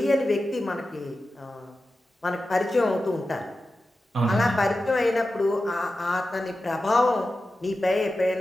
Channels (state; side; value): normal; both; correlation 0.93